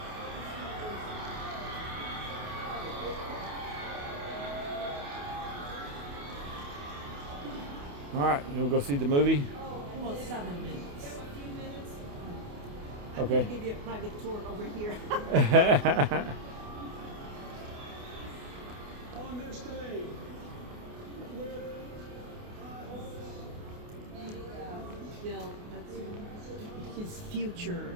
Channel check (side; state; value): left; late; 28 ms